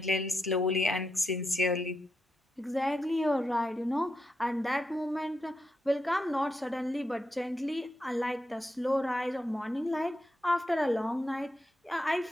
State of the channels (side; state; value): both; normal; correlation 0.85